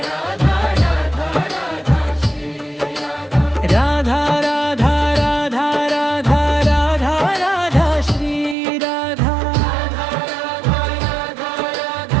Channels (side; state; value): left; drops out; at 8.6 s